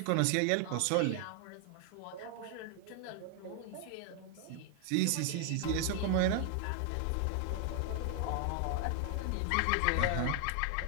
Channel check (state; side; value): different; both; correlation 0.00